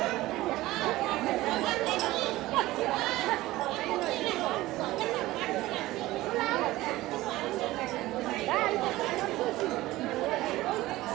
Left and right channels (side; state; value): left; quieter; 17.6 dB